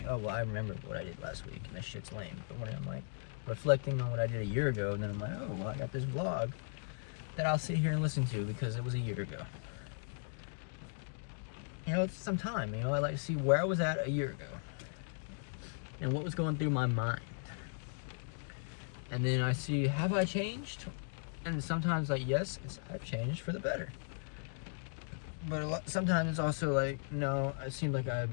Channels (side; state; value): right; silent; digital silence